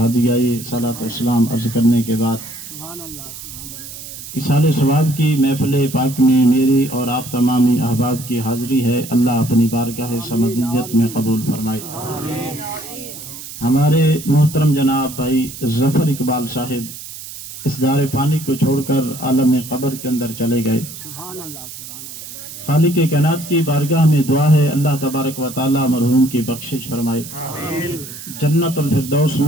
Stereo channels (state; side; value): noise; right; hiss, 12 dB below the sound